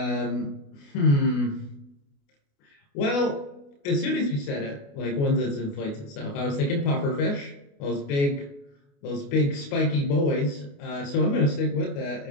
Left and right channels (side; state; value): right; late; 28 ms